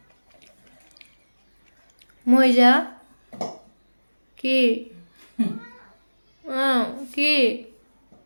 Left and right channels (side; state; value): both; inverted; correlation -1.00